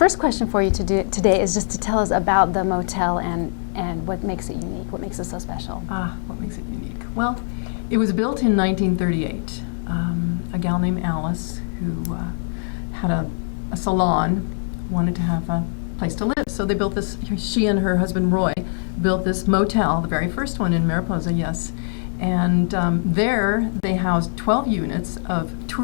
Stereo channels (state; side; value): silent; right; digital silence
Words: question for you today is just to tell us about the motel and what makes it unique, what makes it so special. What makes it unique? Well, it was built in 1938. A gal named Alice, who had a salon, wanted to have a place to live. So they built this, she and her husband Roy built this motel, the very first one in Mariposa, yes. And there they housed 12 units of